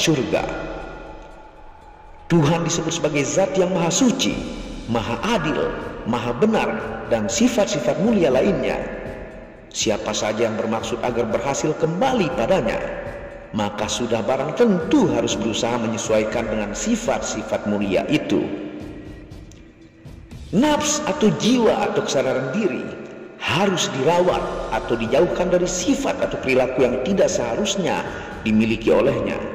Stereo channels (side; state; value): both; identical; correlation 1.00